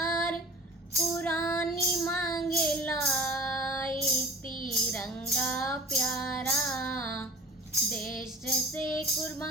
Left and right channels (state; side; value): normal; both; correlation 0.42